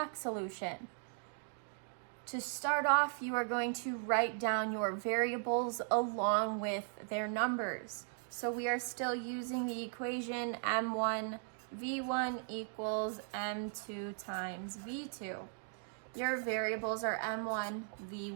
solution? To start off, you are going to write down your variables along with their numbers. So we are still using the equation M1 V1 equals M2 times V2. Your variables are M1,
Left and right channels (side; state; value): left; silent; 53 dB below the other